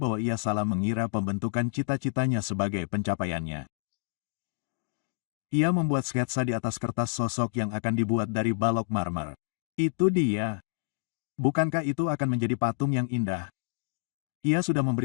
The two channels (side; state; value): right; silent; digital silence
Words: ia salah mengira pembentukan cita-citanya sebagai pencapaiannya. Ia membuat sketsa di atas kertas sosok yang akan dibuat dari balok marmer. Itu dia. Bukankah itu akan menjadi patung yang indah? Ia sudah memberi